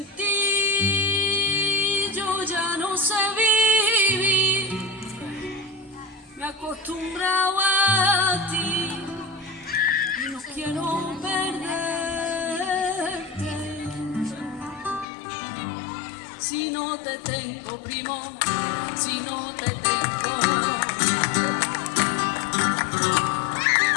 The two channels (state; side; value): drops out; right; at 15.1 s